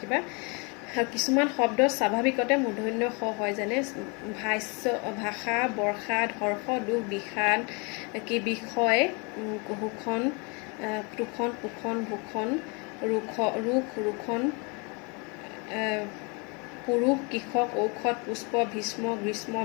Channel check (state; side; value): quieter; right; 32.1 dB